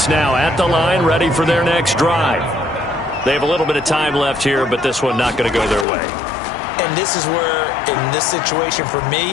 now at the line, ready for their next drive. They have a little bit of time left here, but this one not going to go their way. And this is where, in this situation for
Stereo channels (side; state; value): right; drops out; at 5.9 s